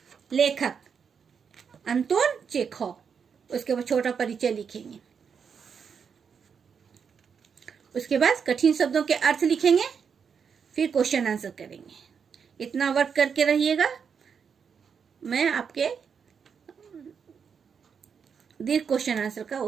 लेखक अंतोन चेखव, उसके बाद छोटा परिचय लिखेंगे। उसके बाद कठिन शब्दों के अर्थ लिखेंगे, फिर क्वेश्चन आंसर करेंगे। इतना वर्क करके रहिएगा। मैं आपके दीर्घ क्वेश्चन आंसर का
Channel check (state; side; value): quieter; left; 6.6 dB